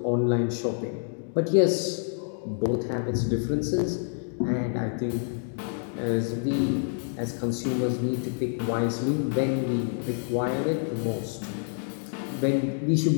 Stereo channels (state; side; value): silent; right; digital silence